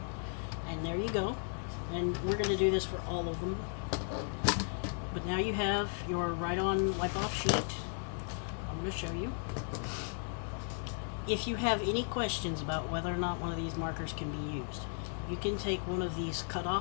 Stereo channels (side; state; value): right; silent; 54 dB below the other